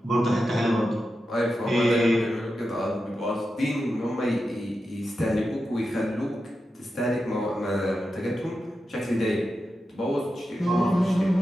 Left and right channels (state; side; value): normal; both; correlation 0.90